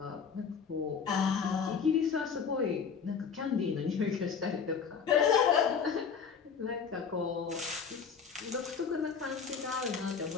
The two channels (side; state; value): right; quieter; 6.4 dB